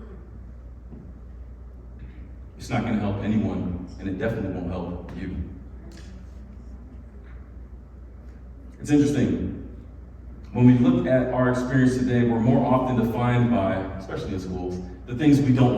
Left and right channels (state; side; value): identical; both; correlation 1.00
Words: it's not going to help anyone, and it definitely won't help you. It's interesting. When we look at our experience today, we're more often defined by, especially in schools, the things we don't